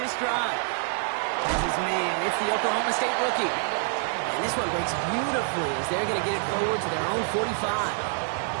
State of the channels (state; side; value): silent; left; 60 dB below the other